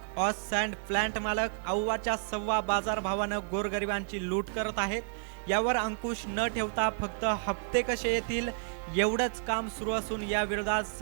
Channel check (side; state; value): left; silent; digital silence